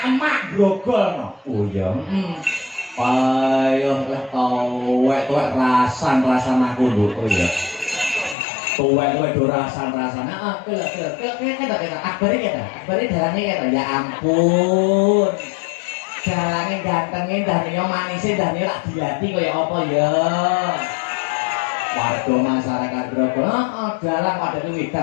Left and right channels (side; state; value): right; drops out; at 8.3 s